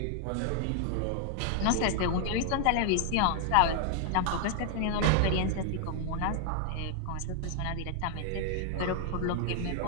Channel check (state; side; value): different; both; correlation 0.00